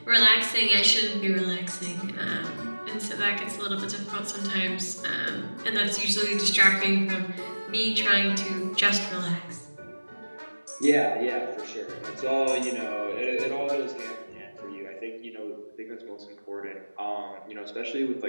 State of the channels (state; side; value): inverted; both; correlation -1.00